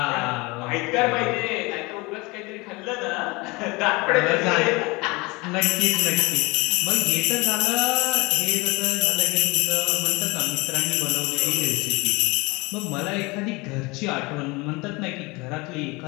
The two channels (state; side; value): quieter; right; 25.0 dB